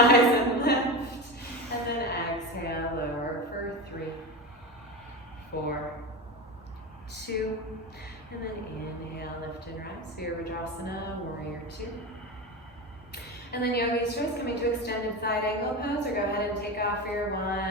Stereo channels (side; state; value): both; normal; correlation 0.22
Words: and lift. And then exhale, lower for 3, 4, 2, and then inhale, lift and rise. Virabhadrasana, warrior two. And then yogi stretch, coming to extended side angle pose, or go ahead and take off your